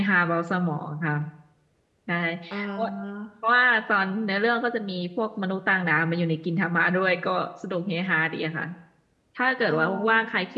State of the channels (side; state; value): both; identical; correlation 1.00